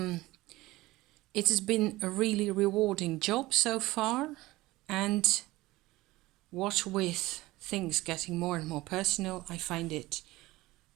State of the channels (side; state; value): left; quieter; 18.9 dB